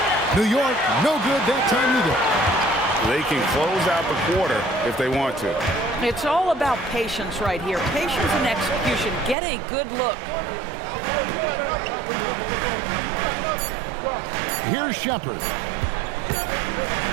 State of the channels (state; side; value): drops out; left; at 9.3 s